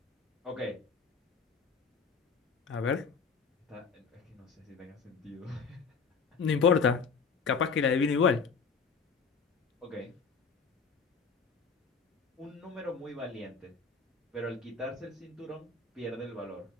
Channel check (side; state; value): right; quieter; 5.3 dB